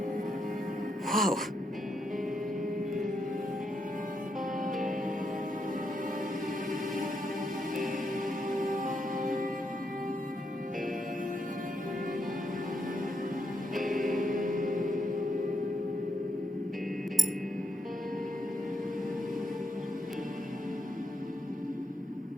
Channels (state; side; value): normal; both; correlation 0.79